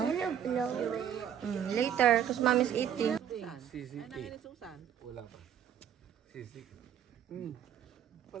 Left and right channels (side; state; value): left; quieter; 9.4 dB